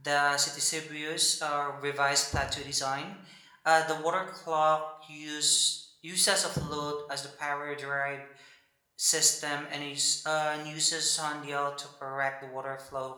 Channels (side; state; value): both; identical; correlation 1.00